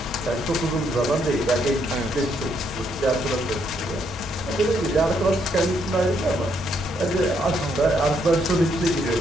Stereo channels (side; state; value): both; normal; correlation 0.73